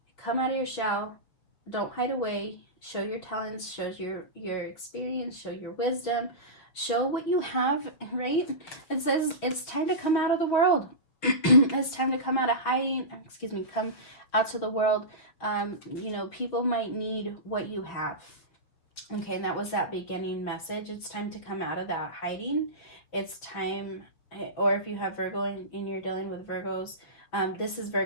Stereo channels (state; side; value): late; right; 6.8 ms